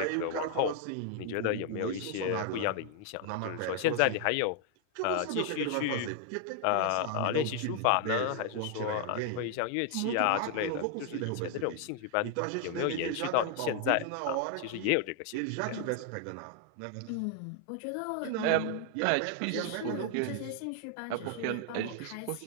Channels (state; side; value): different; both; correlation 0.00